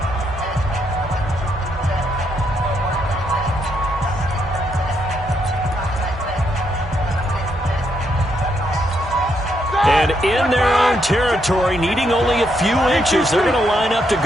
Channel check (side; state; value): both; normal; correlation 0.77